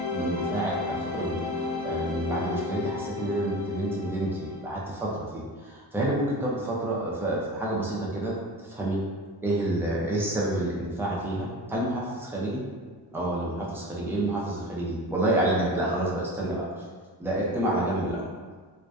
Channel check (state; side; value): normal; both; correlation 0.33